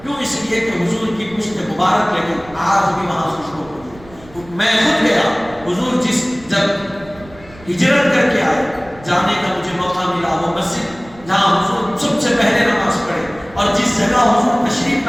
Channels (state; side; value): noise; right; rumble, 22 dB below the sound